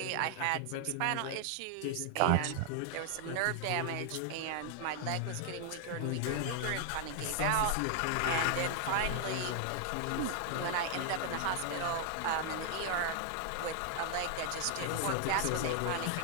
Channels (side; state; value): both; different; correlation 0.00